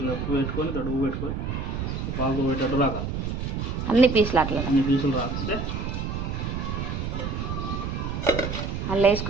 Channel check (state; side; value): noise; right; rumble, 3 dB below the sound